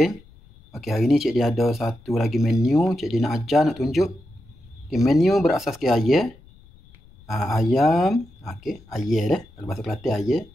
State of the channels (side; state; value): left; noise; rumble, 25 dB below the sound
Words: Okey, hari ni Cik Din ada satu lagi menu. Cik Din nak ajar, nak tunjuk. Okey, menu berasaskan ayam. Ayam, okey, ayam dah. Kalau bahasa Kelantan ayam,